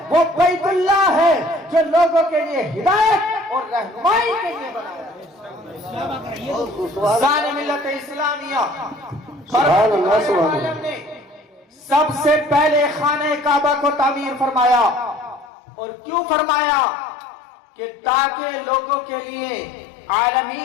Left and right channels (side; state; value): right; drops out; at 15.5 s